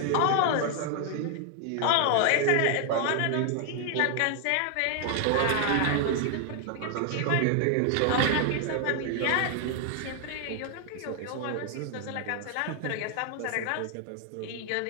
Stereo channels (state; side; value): different; both; correlation 0.00